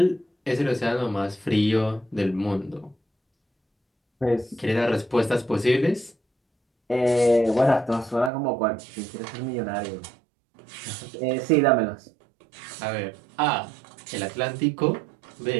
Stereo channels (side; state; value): left; drops out; at 8.3 s